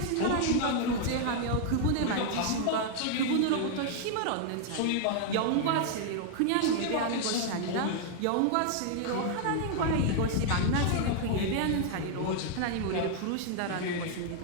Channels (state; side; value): different; both; correlation 0.00